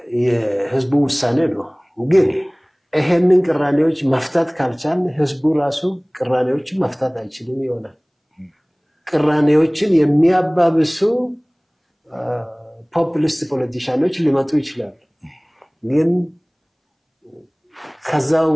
የህዝቡ ውሳኔ ነው። ግን ይሄንን ቅራኔዎች መፍታት ካልቻል ህዝቡ ራሱ ቅራኔዎችን መፍታት አይችልም ይሆናል። ቅራኔዎችን የሚያባብሱ ፖፑሊስት ፖለቲሻኖች ሊመጡ ይችላሉ። ግን ከዛው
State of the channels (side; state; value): both; identical; correlation 1.00